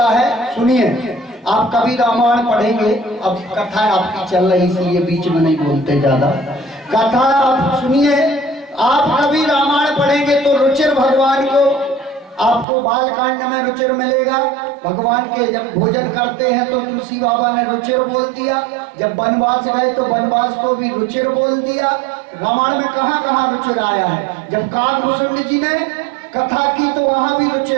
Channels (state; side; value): drops out; left; at 12.7 s